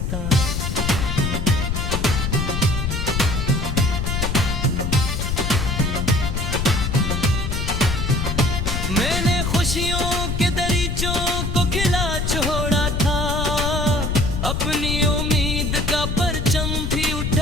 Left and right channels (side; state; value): left; noise; rumble, 1 dB below the sound